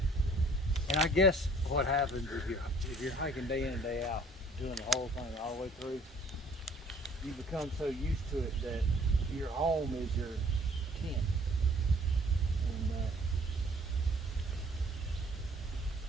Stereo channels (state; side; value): normal; both; correlation 0.57